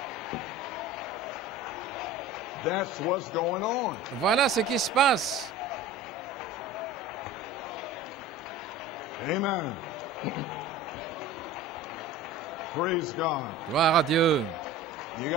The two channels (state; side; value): normal; both; correlation 0.38